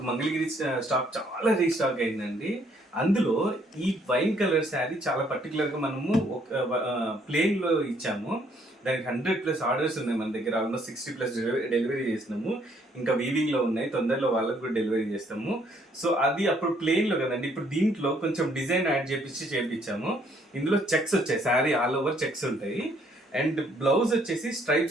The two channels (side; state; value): both; normal; correlation 0.66